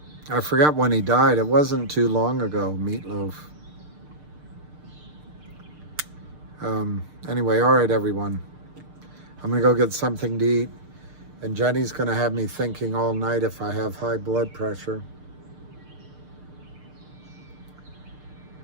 forgot when he died. It wasn't too long ago, Meatloaf. Anyway, all right, everyone. I'm going to go get something to eat. And Jenny's going to have me thinking all night if I have high blood pressure.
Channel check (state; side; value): late; left; 6.6 ms